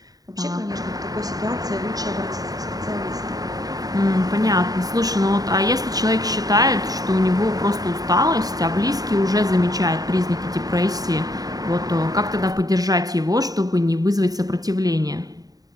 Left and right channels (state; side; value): late; left; 0.18 ms